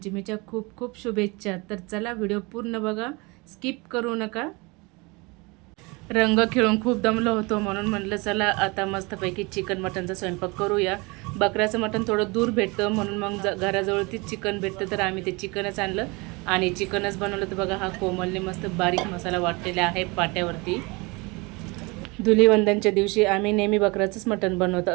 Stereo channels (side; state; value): left; quieter; 26.6 dB